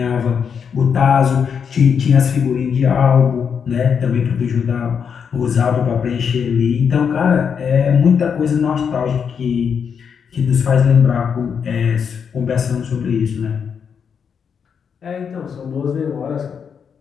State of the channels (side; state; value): right; quieter; 6.9 dB